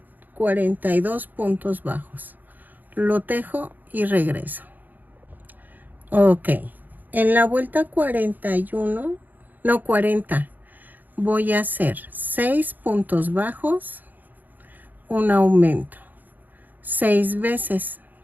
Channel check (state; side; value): late; left; 0.085 ms